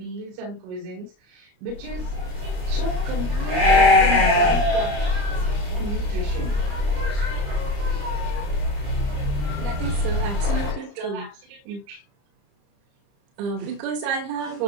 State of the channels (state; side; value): late; left; 30 ms